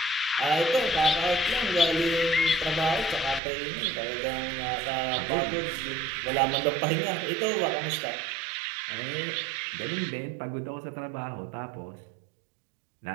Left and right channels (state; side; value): drops out; left; at 3.4 s